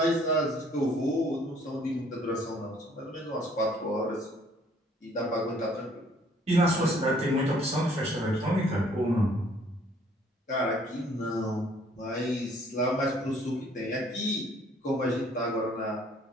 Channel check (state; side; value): normal; both; correlation 0.60